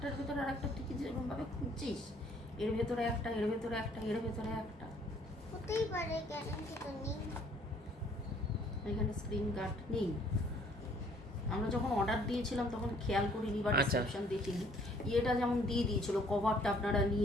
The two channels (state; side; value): normal; both; correlation 0.60